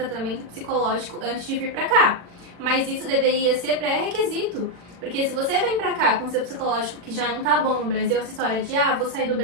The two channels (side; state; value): left; late; 40 ms